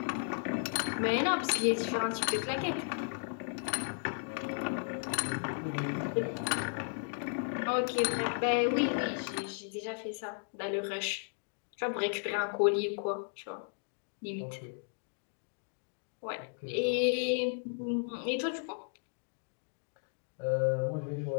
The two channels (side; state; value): right; silent; digital silence